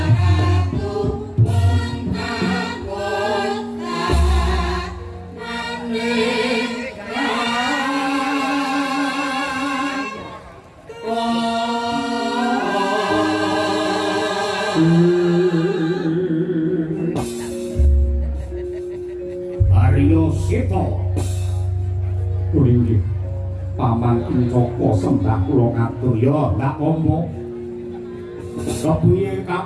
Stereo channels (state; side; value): identical; both; correlation 1.00